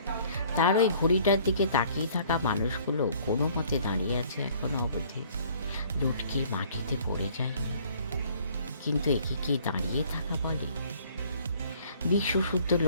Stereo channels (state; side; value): inverted; both; correlation -0.56